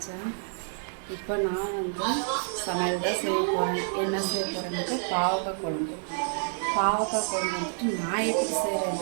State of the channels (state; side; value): silent; left; 59 dB below the other